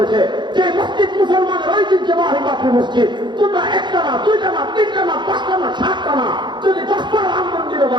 যে মসজিদ মুসলমানের ঐতিহ্যবাহী বাবরি মসজিদ, তোমরা একটা না, দুইটা না, তিনটা না, পাঁচটা না, সাতটা না, যদি 10টা রাম মন্দিরও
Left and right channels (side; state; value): left; late; 0.22 ms